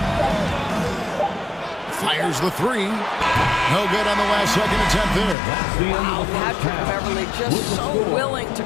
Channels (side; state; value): right; drops out; at 5.4 s